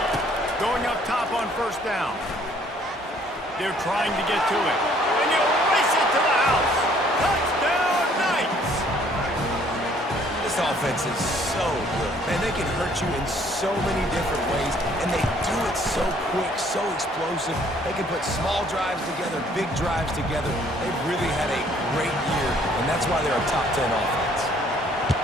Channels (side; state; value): both; normal; correlation 0.61